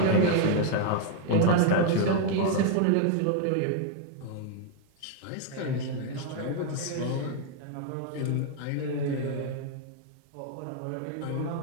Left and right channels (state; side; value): different; both; correlation 0.00